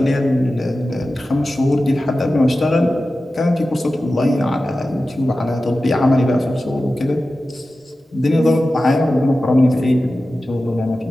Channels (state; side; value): normal; both; correlation 0.94